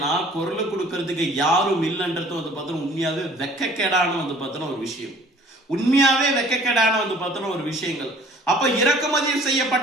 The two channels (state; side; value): normal; both; correlation 0.53